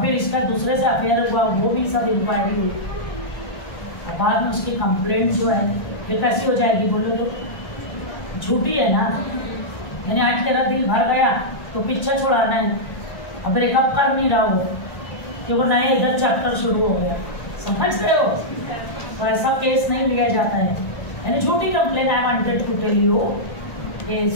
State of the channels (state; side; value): late; right; 1.3 ms